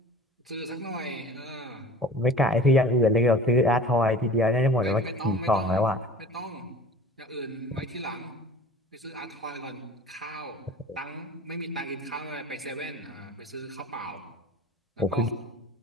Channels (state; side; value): normal; both; correlation 0.42